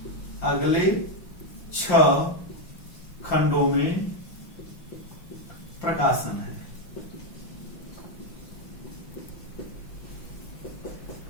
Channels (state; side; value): late; right; 5.8 ms